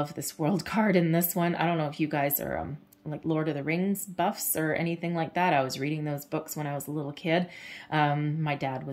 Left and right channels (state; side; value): identical; both; correlation 1.00